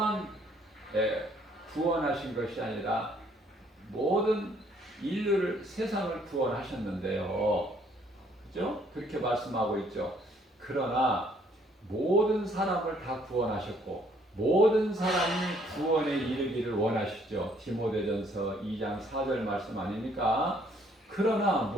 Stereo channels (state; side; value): normal; both; correlation 0.64